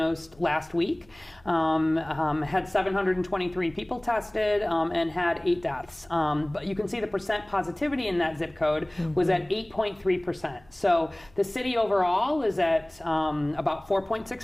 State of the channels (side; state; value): left; noise; hum, 29 dB below the sound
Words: last week, had 723 people tested, and had 8 deaths. But you can see the percent positivity in that zip code was at 8.3%. So the city overall is at about